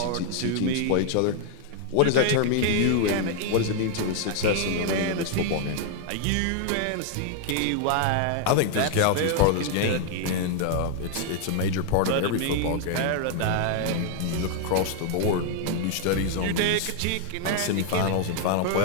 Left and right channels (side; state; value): both; different; correlation 0.00